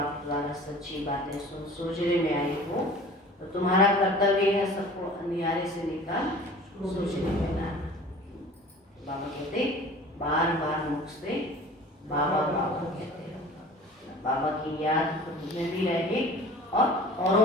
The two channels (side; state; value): both; normal; correlation 0.43